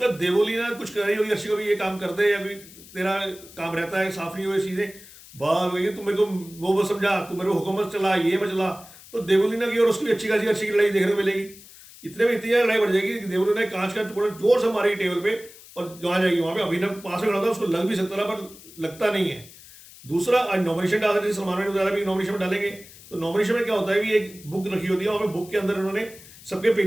देवोली ना कुछ कर रही होगी अर्शी को भी, ये काम कर दे, या फिर तेरा काम रहता है साफ नहीं हुए चीज़ें, बात वही तू मेरे को वो समझा, तू मेरे को हुकूमत चला, ये मैं चला। तो देवोलीना की और उसकी अच्छी खासी अर्शी की लड़ाई देखने को मिलेगी। इतने में इतनी लड़ाई बढ़ जाएगी कि देवोलीना कांच का टुकड़ा जोर से मारेगी टेबल पे, और जहाँ जाएगी वहाँ पे अभिनव पास में खड़ा था, उसको लग भी सकता था पर लगता नहीं है। दूसरा, आज नॉमिनेशन डाल रहे थे, सलमान ने बताया भी नॉमिनेशन में डालेंगे। तो नॉमिनेशन में क्या होता है भी एक बुक रखी होती है, वहाँ पे बुक के अंदर उन्होंने सबके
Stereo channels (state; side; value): noise; left; hiss, 20 dB below the sound